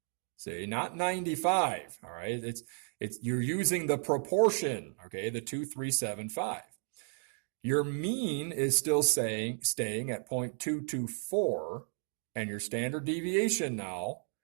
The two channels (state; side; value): silent; left; 55 dB below the other